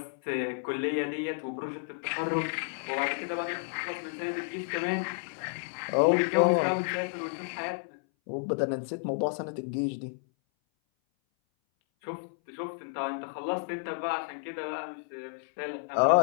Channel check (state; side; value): silent; right; 57 dB below the other